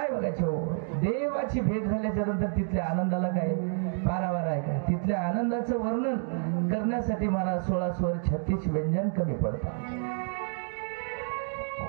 बघायचं हो, देवाची भेट झाल्याच्या नंतर तिथल्या आनंदाला काय पारावार आहे का? तिथल्या आनंदाचं वर्णन करण्यासाठी मला 16 स्वर 36 व्यंजन कमी पडतात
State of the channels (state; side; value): silent; left; 58 dB below the other